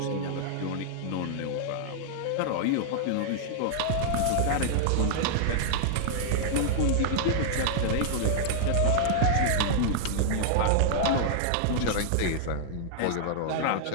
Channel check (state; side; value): different; both; correlation -0.01